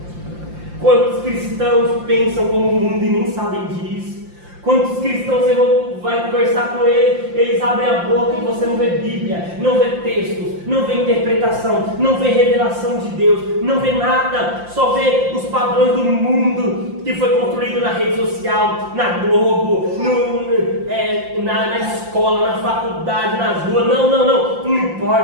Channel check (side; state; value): left; late; 5.7 ms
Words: Quantos cristãos pensam como o mundo e nem sabem disso? Quantos cristãos você vai conversar com eles abrem a boca e você não vê Bíblia, não vê textos, não vê interpretação, não vê revelação de Deus, não vê nada, só vê os padrões do mundo que foi construído na rede social, na Globo, na escola, na faculdade, nas ruas. Não